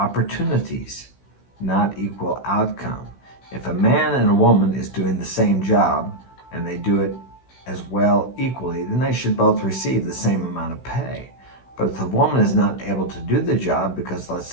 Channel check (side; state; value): right; late; 16 ms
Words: not equal outcome. If a man and a woman is doing the same job and they do it as well equally, then they should both receive the same amount of pay. But if the woman is not able to do the job because, let's